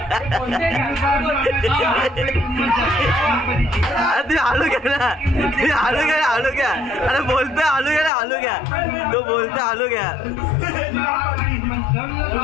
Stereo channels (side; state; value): right; drops out; at 8.1 s